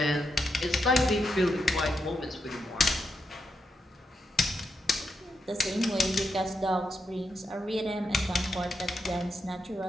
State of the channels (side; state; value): both; normal; correlation 0.83